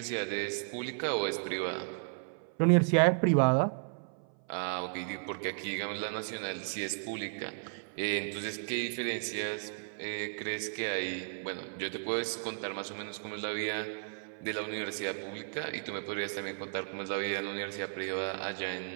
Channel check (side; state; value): left; silent; 55 dB below the other